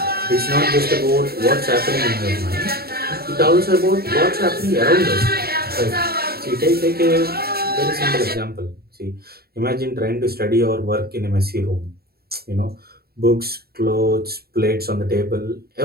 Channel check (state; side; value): late; left; 0.45 ms